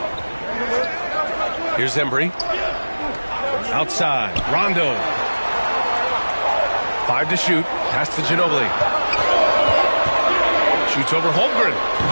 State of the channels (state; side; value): inverted; both; correlation -1.00